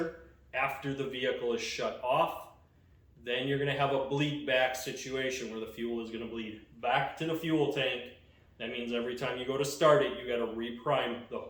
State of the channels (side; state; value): both; identical; correlation 1.00